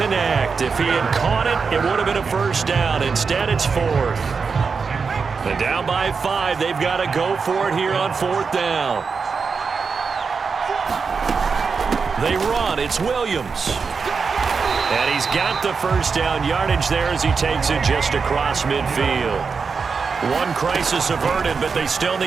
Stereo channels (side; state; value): left; quieter; 5.2 dB